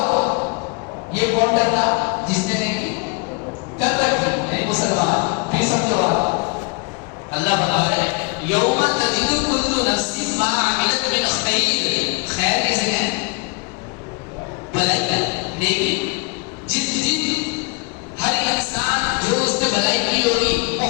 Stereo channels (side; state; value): right; quieter; 30.2 dB